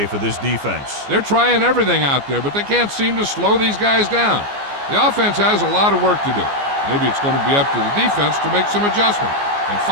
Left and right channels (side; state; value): left; late; 14 ms